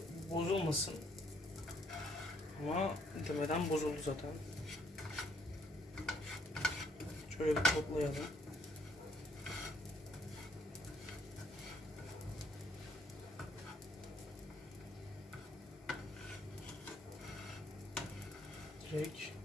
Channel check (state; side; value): normal; both; correlation 0.67